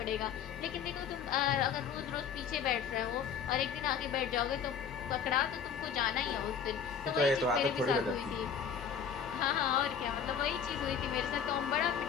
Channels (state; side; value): quieter; right; 7.2 dB